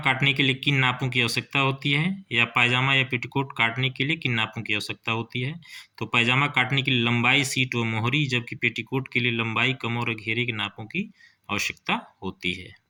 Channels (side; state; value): both; identical; correlation 1.00